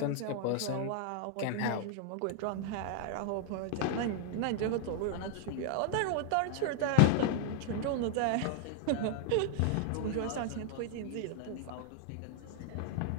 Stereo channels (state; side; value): different; both; correlation 0.00